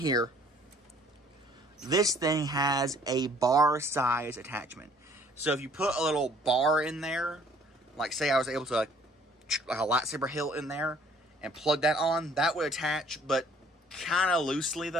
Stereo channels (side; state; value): both; normal; correlation 0.58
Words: this thing has a bar size attachment. So if you put a little bar in there, like say I was able to like a lightsaber hilt in there and plug that on, that would attach, but kind of loosely